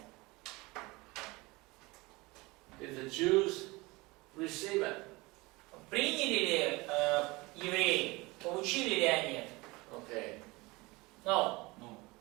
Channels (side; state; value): left; quieter; 23.4 dB